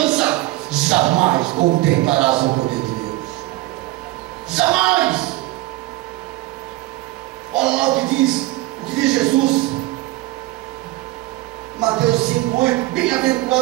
jamais contemplarás o poder de Deus. Jamais! Olha lá o que diz Jesus, Mateus 5:8:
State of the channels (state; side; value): quieter; left; 18.6 dB